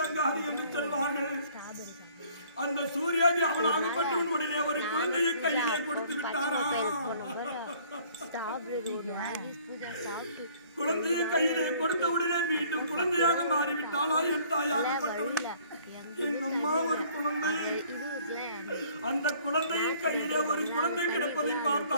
என்று சொல்வார்கள். அந்த சூர்யாதி அவனாகப்பட்டவன் உடனே ஒரு குழந்தையை கையிலே கொடுத்து விட்டாரா. குழந்தையை கையிலே கொடுத்த உடனே மீண்டும் குழந்தையாக மாறிவிட்டாளா என் தாயாகப்பட்டவன். என் அம்மா ஒரு குழந்தை, அந்த குழந்தையின் கையிலே ஒரு குழந்தை கிடப்பதை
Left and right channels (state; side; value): inverted; both; correlation -0.57